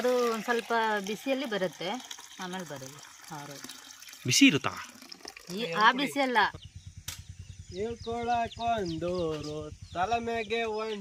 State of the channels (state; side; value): identical; both; correlation 1.00